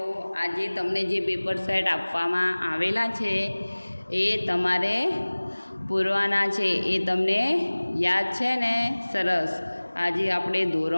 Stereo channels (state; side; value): inverted; both; correlation -1.00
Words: આજે તમને જે પેપર સેટ આપવામાં આવેલા છે એ તમારે પૂરવાના છે. એ તમને યાદ છે ને? સરસ. આજે આપણે